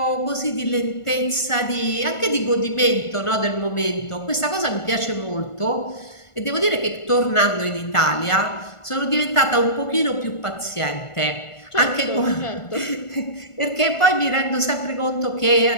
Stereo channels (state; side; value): late; right; 1.5 ms